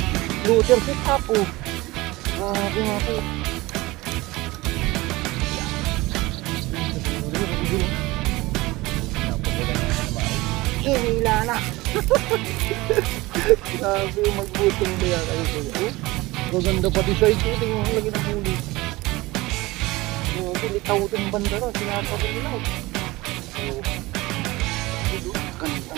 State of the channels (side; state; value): left; quieter; 20.7 dB